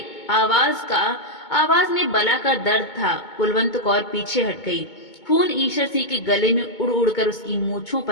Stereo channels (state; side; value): late; right; 2.2 ms